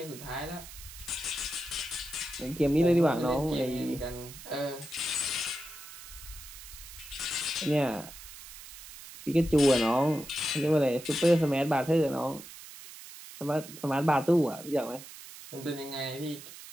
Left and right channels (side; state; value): right; noise; hiss, 15 dB below the sound